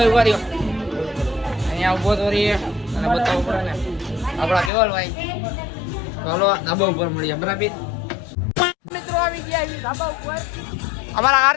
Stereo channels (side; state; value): right; drops out; at 4.7 s